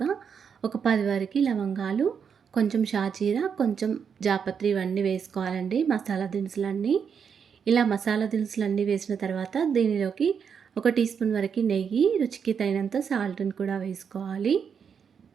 ఒక 10 వరకు లవంగాలు, కొంచెం షాజీరా, కొంచెం జాపత్రి ఇవన్నీ వేసుకోవాలండి. మసాలా దినుసులన్నీ. ఇలా మసాలా దినుసులన్నీ వేసిన తర్వాత దీనిలోకి ఒక టీ స్పూన్ వరకు నెయ్యి, రుచికి తగినంత సాల్ట్‌ని కూడా వేసుకోవాలి.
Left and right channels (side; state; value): left; quieter; 6.9 dB